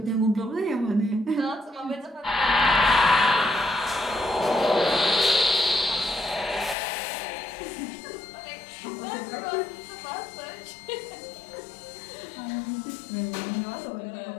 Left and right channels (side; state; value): right; drops out; at 6.8 s